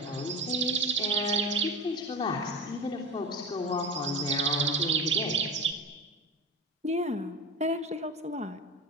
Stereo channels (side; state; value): both; normal; correlation 0.27